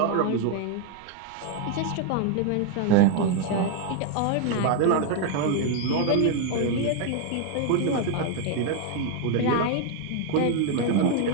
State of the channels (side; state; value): both; different; correlation 0.00